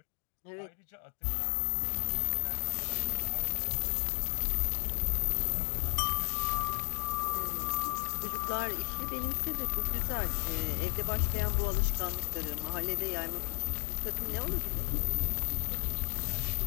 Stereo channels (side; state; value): right; silent; 55 dB below the other